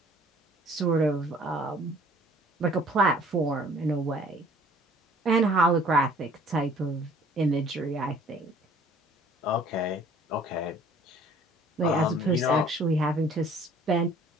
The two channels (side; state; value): both; normal; correlation 0.54